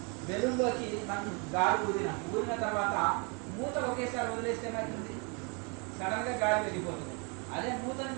బెలూన్లోకి మనం గాలి ఊదిన తర్వాత మూత ఒకేసారి వదిలేస్తే ఏమవుతుంది? సడన్గా గాలి వెళ్ళిపోతుంది. అదే మూతని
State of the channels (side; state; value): left; quieter; 34.1 dB